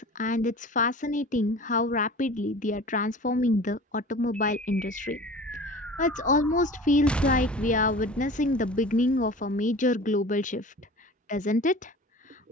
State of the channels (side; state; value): both; normal; correlation 0.39